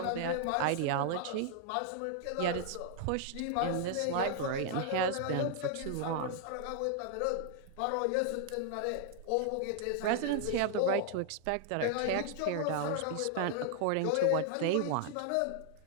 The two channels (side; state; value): both; different; correlation -0.01